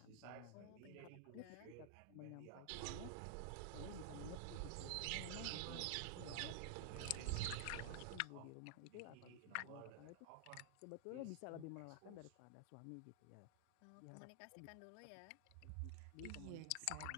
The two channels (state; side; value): different; both; correlation 0.00